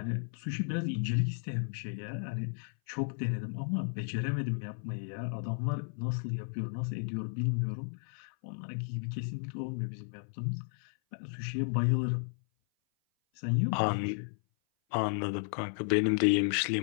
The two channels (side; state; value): right; silent; 55 dB below the other